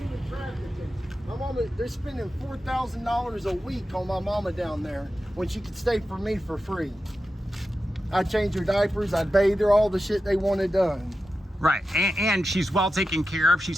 My mama they're spending $4,000 a week on my mama down there when she could stay for me for free. I'd change her diapers, I'd bathe her, all the shit they wanted done. Right, and she's well taken care of. She's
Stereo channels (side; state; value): both; normal; correlation 0.91